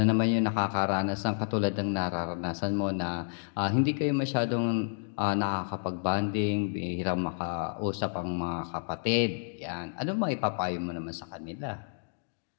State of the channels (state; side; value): silent; right; digital silence